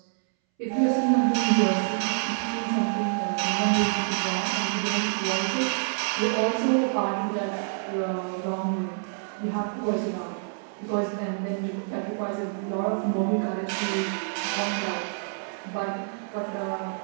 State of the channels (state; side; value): silent; left; 60 dB below the other